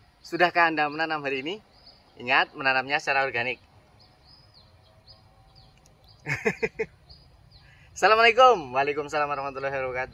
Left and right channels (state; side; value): identical; both; correlation 1.00